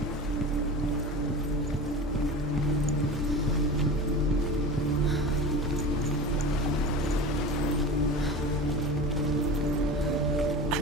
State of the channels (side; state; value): both; normal; correlation 0.31